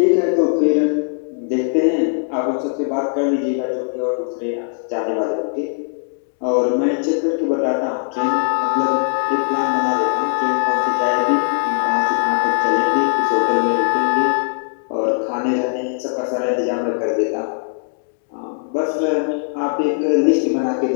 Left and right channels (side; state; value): right; silent; digital silence